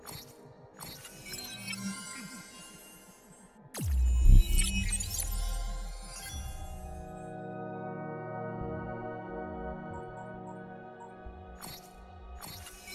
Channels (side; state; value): both; identical; correlation 1.00